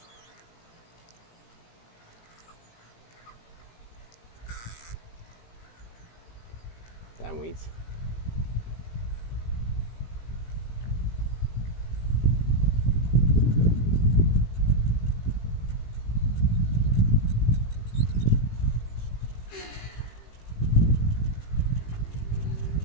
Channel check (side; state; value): right; late; 18 ms